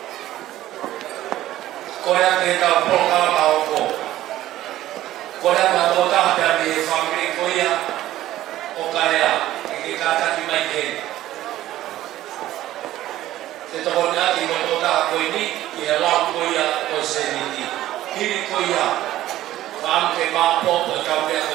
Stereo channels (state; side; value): quieter; left; 14.3 dB